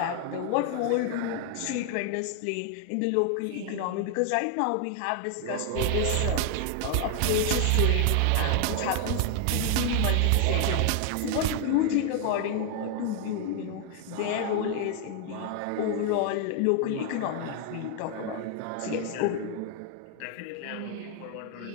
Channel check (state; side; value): different; both; correlation 0.00